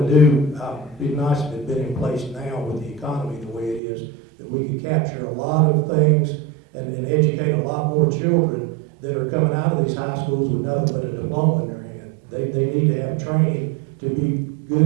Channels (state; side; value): drops out; left; at 3.8 s